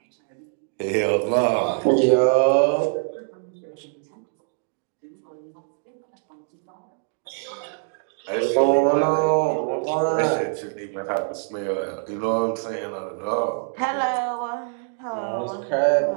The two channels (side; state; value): left; silent; 62 dB below the other